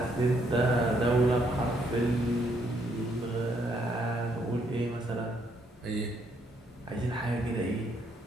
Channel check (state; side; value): normal; both; correlation 0.72